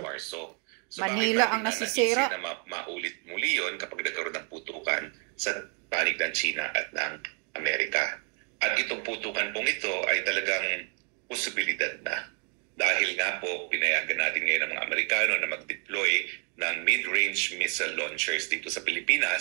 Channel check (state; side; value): quieter; left; 39.3 dB